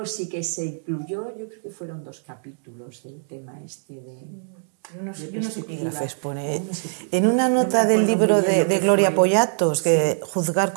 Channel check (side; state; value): left; silent; 63 dB below the other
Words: sí que se incluyó, yo creo que fueron 2 capítulos del tema este de perspectiva. En una nota del libro de Gloria Pollatos, que Juzgar